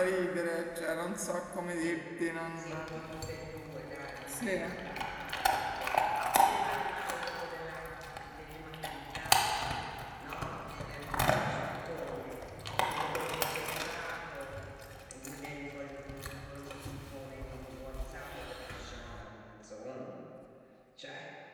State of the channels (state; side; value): identical; both; correlation 1.00